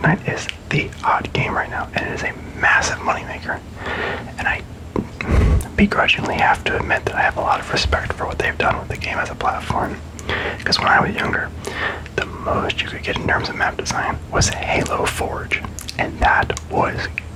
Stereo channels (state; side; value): identical; both; correlation 1.00